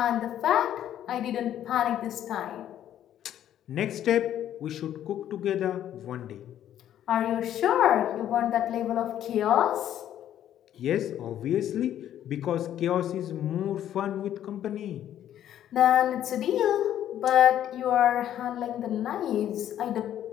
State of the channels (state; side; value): quieter; right; 11.1 dB